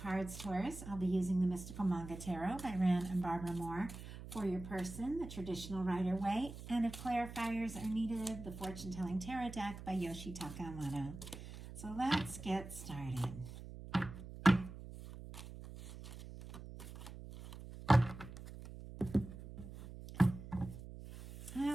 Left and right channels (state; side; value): noise; right; hum, 12 dB below the sound